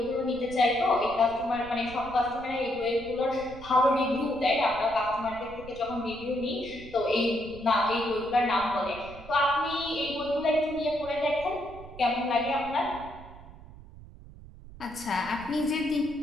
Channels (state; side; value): noise; right; rumble, 17 dB below the sound